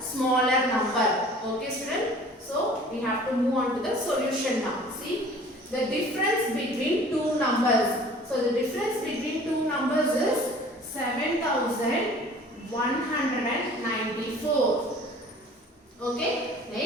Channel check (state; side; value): normal; both; correlation 0.48